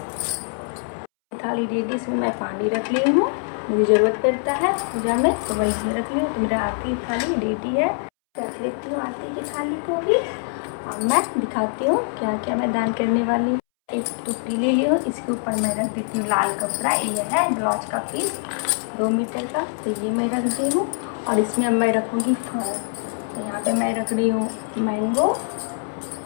थाली रेडी, इसमें मैं पानी रख ली हूँ, मुझे ज़रूरत पड़ता है पूजा में तो मैं इसमें रख ली हूँ। तो मेरा आरती थाली रेडी है। रख लेती हूँ आरती की थाली को भी। अब मैं दिखाती हूँ क्या क्या मैं दान करने वाली हूँ। एक टुकड़ी ले ली हूँ, इसके ऊपर मैं रख देती हूँ लाल कपड़ा। ये है ब्लाउज का पीस 2 मीटर का, तो ये मैं रख दी हूँ। और इसमें अब मैं रखूँगी फल। तो यहाँ पे मैं रख रही हूँ मैंगो,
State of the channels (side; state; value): right; silent; 63 dB below the other